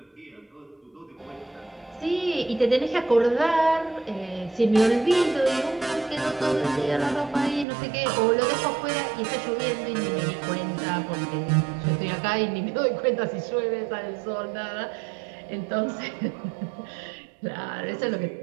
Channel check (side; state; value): left; drops out; at 7.7 s